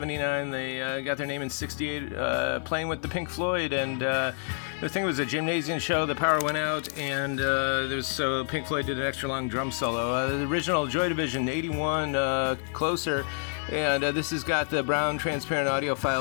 They got their name in 68, playing with the Pink Floyd. And the thing was a gymnasium show. The power went out, and so Pink Floyd did an extra long drum solo. The original Joy Division, 81, Closer. And this has got the brown transparent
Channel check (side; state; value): right; silent; digital silence